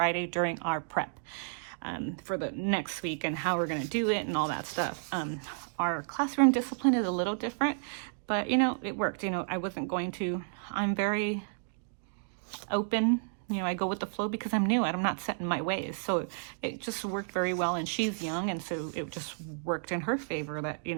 during our prep for the next week and how we're going to do it and all that stuff. Our classroom discipline is a little different, but it worked. I'm very open. I go with the flow because I'm new and I'm not set in my ways. So it just worked very well, and she's young, and so it just worked in her favor that,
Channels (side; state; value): left; silent; digital silence